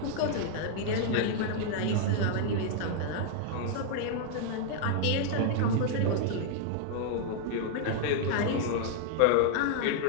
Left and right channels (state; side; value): different; both; correlation 0.00